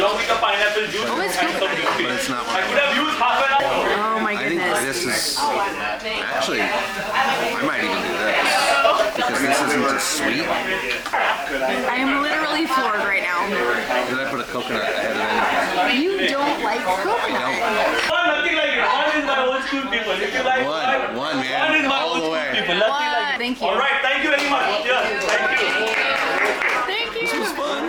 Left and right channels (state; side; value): identical; both; correlation 1.00